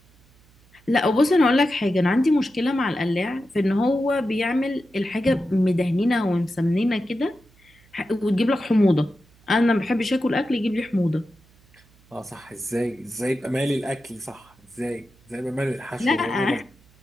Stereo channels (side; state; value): right; noise; hum, 30 dB below the sound